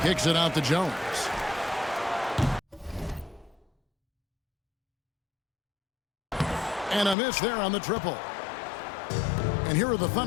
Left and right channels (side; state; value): right; drops out; at 7.2 s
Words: Kicks it out to Jones. And a miss there on the triple. And here are the